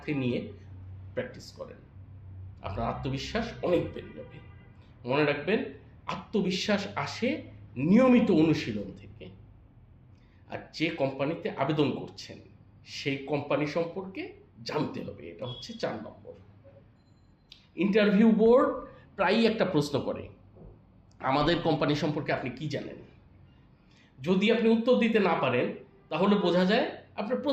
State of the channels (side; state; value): both; identical; correlation 1.00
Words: নিয়ে প্র্যাকটিস করেন। আপনার আত্মবিশ্বাস অনেক বেড়ে যাবে। মনে রাখবেন, আত্মবিশ্বাস আসে নিয়মিত অনুশীলন থেকে। আর যে কোম্পানিতে আবেদন করছেন সেই কোম্পানি সম্পর্কে জানতে হবে, এটা হচ্ছে 4 নম্বর। ইন্টারভিউ বোর্ড প্রায়ই একটা প্রশ্ন করে, আমাদের কোম্পানি সম্পর্কে আপনি কি জানেন? যদি আপনি উত্তর দিতে না পারেন, তাহলে বোঝা যায় আপনার